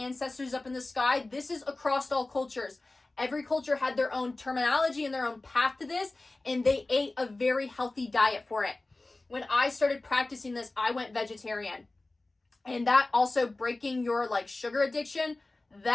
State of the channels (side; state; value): right; quieter; 3.0 dB